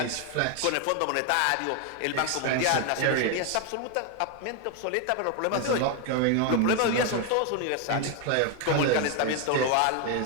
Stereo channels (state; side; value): different; both; correlation 0.01